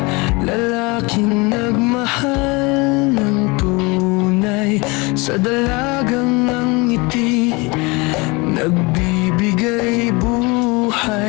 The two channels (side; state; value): right; quieter; 26.4 dB